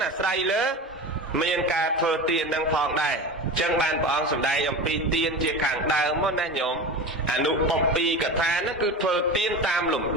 អាស្រ័យលើមានការធ្វើទាននឹងផងដែរអញ្ចឹងបានព្រះអង្គសម្ដែងអំពីទានជាខាងដើមមកណាញោមអនុបព្ពីកថានោះគឺធ្វើទានតាមលំ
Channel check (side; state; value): both; normal; correlation 0.29